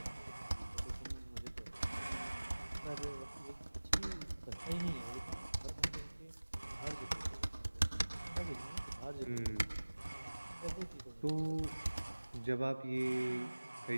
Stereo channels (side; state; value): both; inverted; correlation -1.00